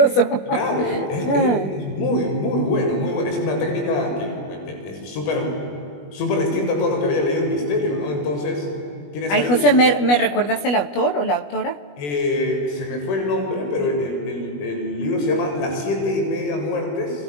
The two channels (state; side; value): late; right; 21 ms